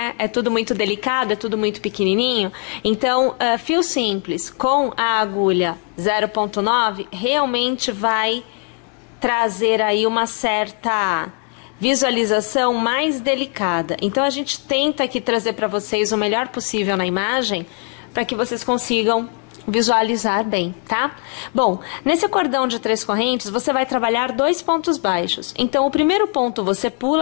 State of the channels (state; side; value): quieter; right; 37.0 dB